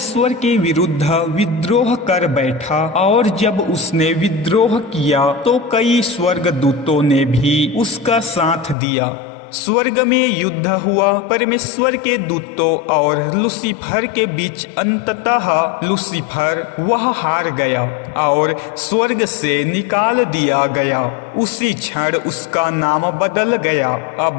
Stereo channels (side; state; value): right; drops out; at 8.8 s